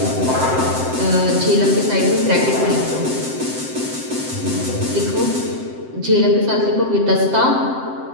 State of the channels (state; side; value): late; left; 7.7 ms